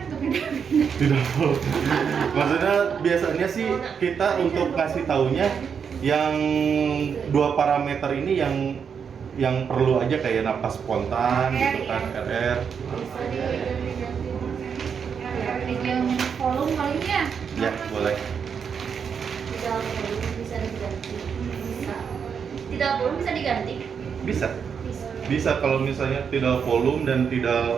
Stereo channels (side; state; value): left; quieter; 6.8 dB